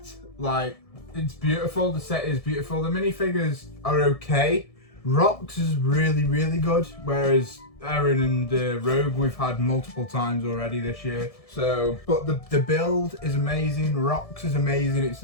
Like, it's beautiful. The set is beautiful. The minifigures are okay. Rox is really, really good, whereas Erin and Rogue we've had multiple times already this year. So, but the build is amazing. Rox is amazing.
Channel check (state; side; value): late; right; 1.7 ms